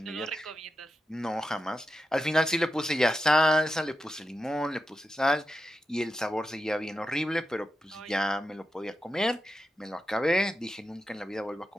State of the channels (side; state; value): both; normal; correlation 0.89